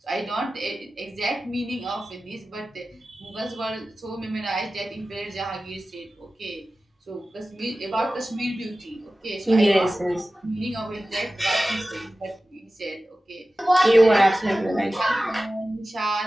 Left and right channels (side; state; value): both; normal; correlation 0.96